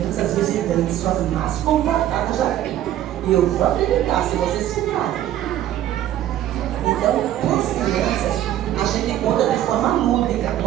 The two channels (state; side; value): quieter; left; 12.4 dB